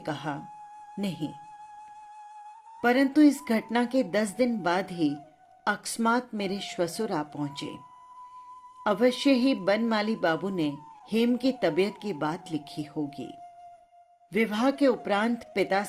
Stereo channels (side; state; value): both; identical; correlation 1.00